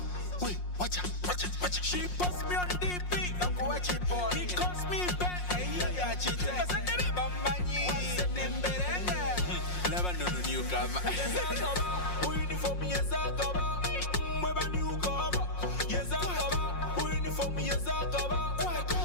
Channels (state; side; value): late; right; 5.6 ms